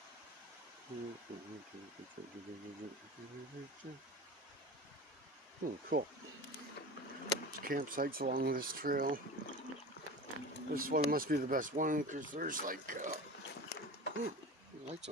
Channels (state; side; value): normal; both; correlation 0.33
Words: Cool. Campsites along this trail. This one must be the best one because there's like lights